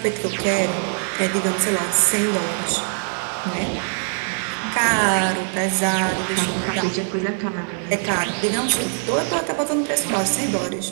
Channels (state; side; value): silent; left; 64 dB below the other